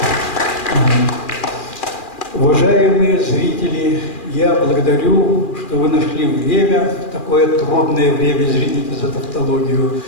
Уважаемые зрители, я благодарю, что вы нашли время, такое трудное время, извините за тавтологию,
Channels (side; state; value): right; late; 2.4 ms